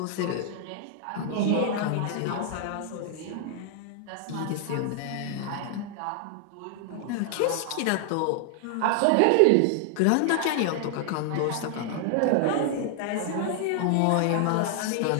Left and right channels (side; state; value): both; different; correlation 0.00